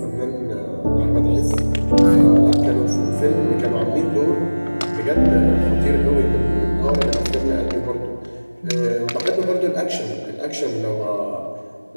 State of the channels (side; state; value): both; inverted; correlation -1.00